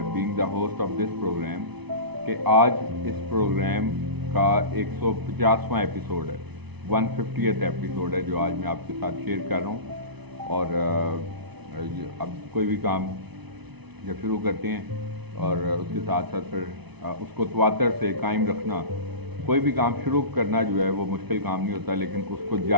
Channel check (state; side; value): late; left; 0.99 ms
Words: being the host of this programme कि आज इस प्रोग्राम का 150वां एपिसोड है, 150th एपिसोड है जो आज मैं आपके साथ शेयर कर रहा हूँ। और अब कोई भी काम जब शुरू करते हैं और उसके साथ साथ फिर उसको तवातर से कायम रखना, कोई भी काम शुरू करना जो है वो मुश्किल काम नहीं होता, लेकिन उसको